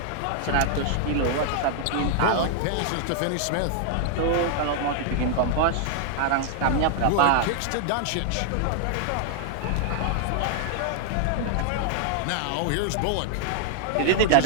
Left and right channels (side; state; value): both; different; correlation -0.01